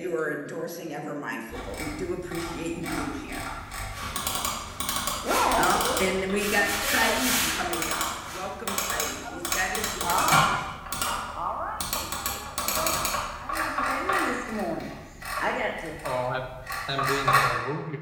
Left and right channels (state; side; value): identical; both; correlation 1.00